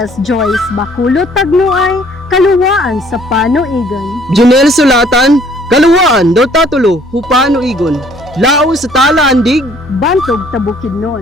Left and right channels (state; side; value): normal; both; correlation 0.59